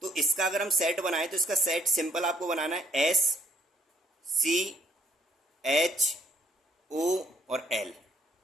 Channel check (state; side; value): normal; both; correlation 0.67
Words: तो इसका अगर हम सेट बनाए तो इसका सेट सिंपल आपको बनाना है SCHO और L,